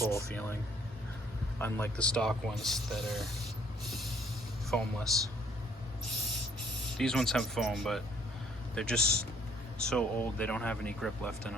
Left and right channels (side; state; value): both; normal; correlation 0.62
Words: feeling, unlike the stock ones that are foamless. These ones have foam, but they're just so old they don't have any grip left in